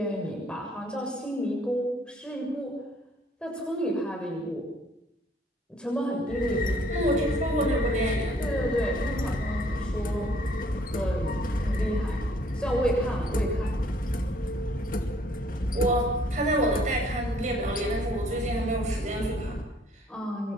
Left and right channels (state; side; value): normal; both; correlation 0.61